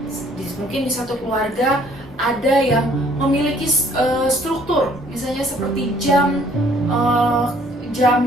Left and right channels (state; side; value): normal; both; correlation 0.60